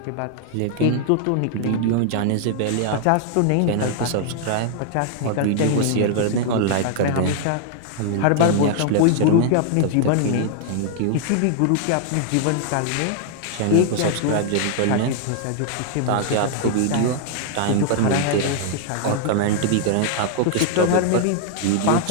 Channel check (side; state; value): both; different; correlation -0.01